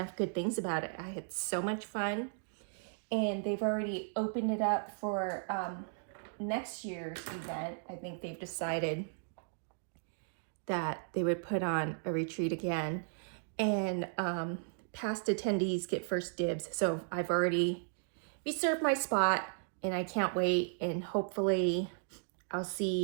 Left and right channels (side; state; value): left; silent; digital silence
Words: good things about it. I had so much fun, and they've already opened it up for next year's event. I think they've decided that they would put on a retreat again, and past attendees get first dibs. So I've already reserved my spot, and I can't wait, and hopefully I'll